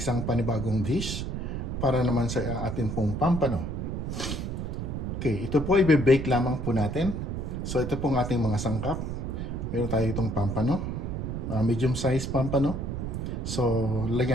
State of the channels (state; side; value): noise; right; rumble, 3 dB below the sound